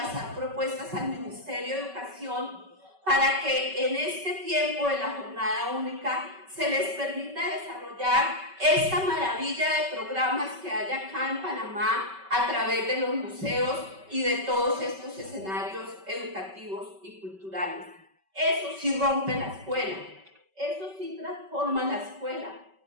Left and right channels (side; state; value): left; late; 5.2 ms